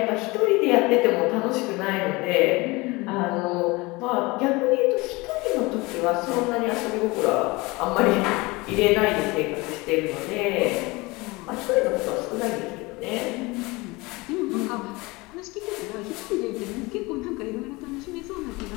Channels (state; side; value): quieter; right; 23.6 dB